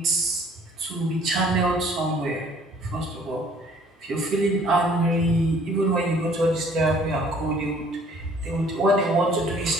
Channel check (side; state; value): both; normal; correlation 0.57